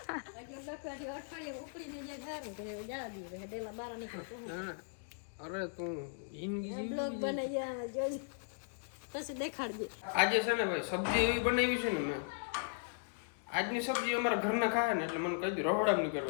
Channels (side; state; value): right; silent; digital silence